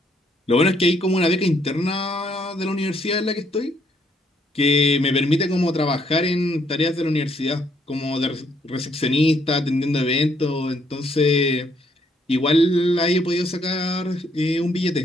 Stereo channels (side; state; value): both; normal; correlation 0.70